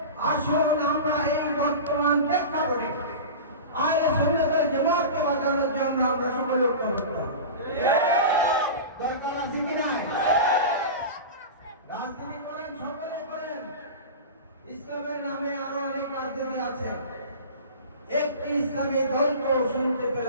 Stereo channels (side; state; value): both; inverted; correlation -0.30